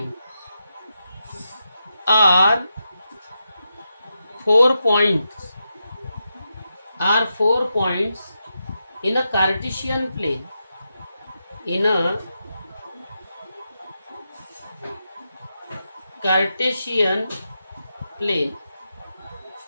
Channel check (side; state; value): both; inverted; correlation -0.86